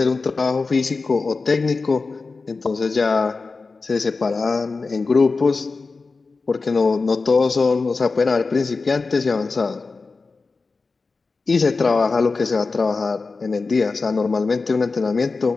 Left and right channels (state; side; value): quieter; right; 4.1 dB